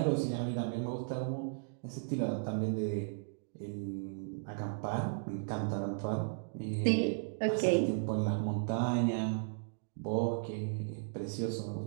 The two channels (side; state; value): left; silent; digital silence